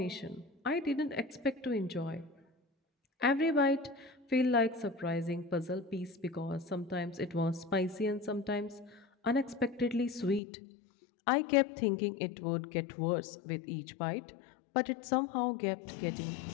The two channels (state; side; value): drops out; right; at 10.4 s